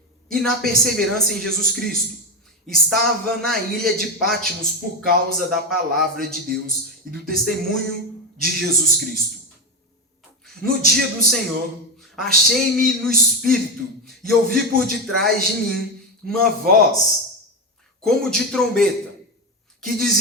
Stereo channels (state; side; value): normal; both; correlation 0.14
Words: e na perseverança em Jesus Cristo, estava na ilha de Patmos por causa da palavra de Deus e do testemunho de Jesus Cristo. No dia do Senhor, achei-me no Espírito e ouvi por detrás de mim uma voz, como de trombeta, que